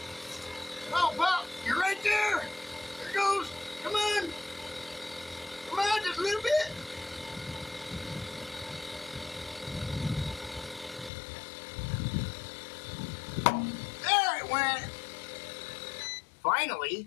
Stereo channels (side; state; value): right; drops out; at 11.1 s